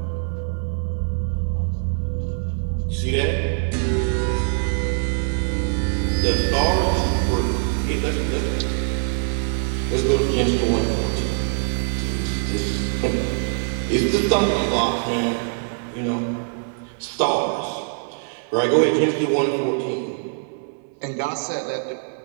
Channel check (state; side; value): silent; left; 63 dB below the other